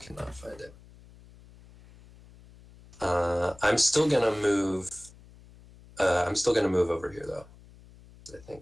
find it. I'm still gonna move. I'm still gonna move over here though. I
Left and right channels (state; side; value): noise; left; hum, 23 dB below the sound